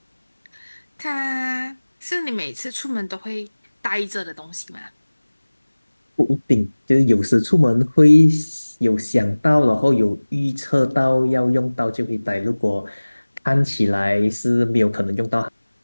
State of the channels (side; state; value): both; inverted; correlation -1.00